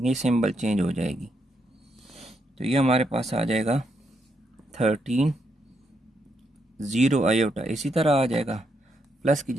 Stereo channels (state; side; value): normal; both; correlation 0.79